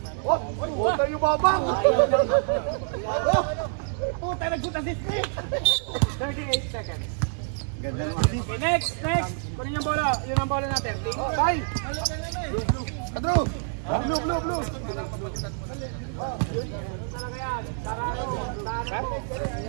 Huwag tayo babang! Puta, nagsuta si Steve. 38 seconds. Ganda naman. Okay, next. Kunin yung bola. Yun ang bola natin. Bye! Andrew! Blue!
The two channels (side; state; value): left; silent; digital silence